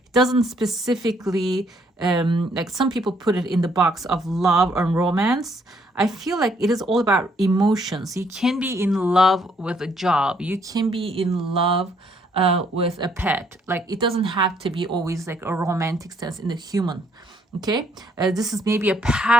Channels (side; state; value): both; normal; correlation 0.68